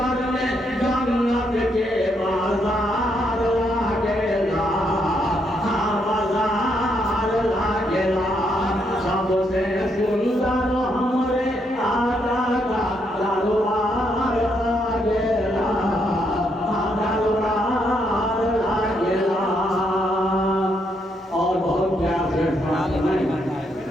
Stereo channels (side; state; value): both; normal; correlation 0.76